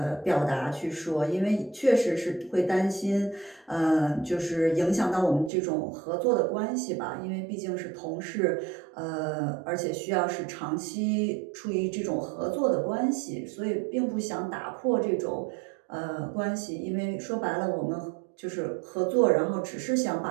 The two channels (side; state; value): left; drops out; at 5.5 s